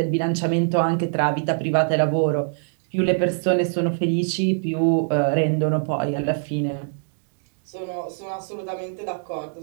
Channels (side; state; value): left; silent; digital silence